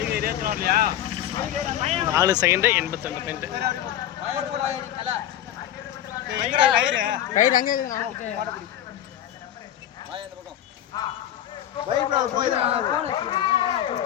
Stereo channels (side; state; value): right; quieter; 11.6 dB